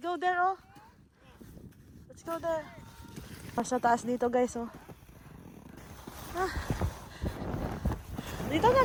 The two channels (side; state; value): both; identical; correlation 1.00